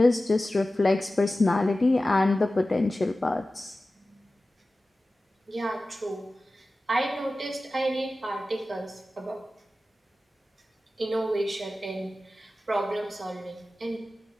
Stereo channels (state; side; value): normal; both; correlation 0.95